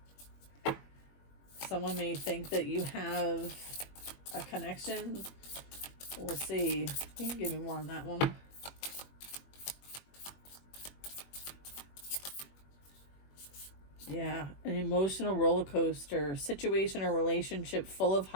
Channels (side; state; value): right; late; 21 ms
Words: Someone may think that you have a connection. We'll see. You can give me more on that one. Yeah, an emotional roller coaster, situation or relationship full of